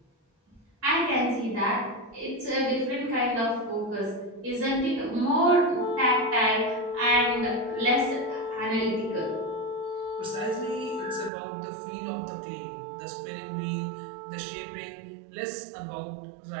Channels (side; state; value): left; drops out; at 11.3 s